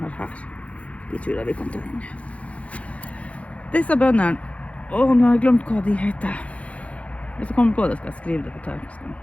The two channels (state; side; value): late; right; 0.064 ms